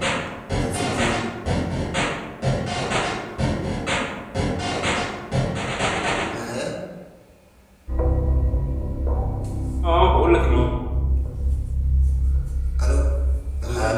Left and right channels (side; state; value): both; identical; correlation 1.00